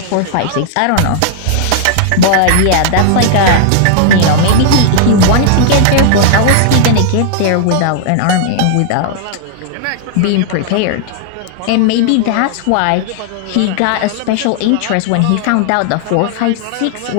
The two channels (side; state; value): both; different; correlation -0.01